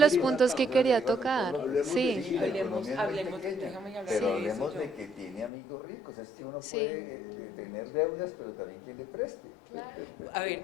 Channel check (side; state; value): right; drops out; at 5.5 s